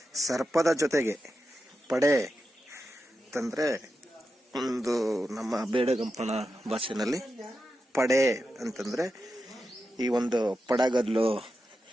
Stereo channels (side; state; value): both; normal; correlation 0.89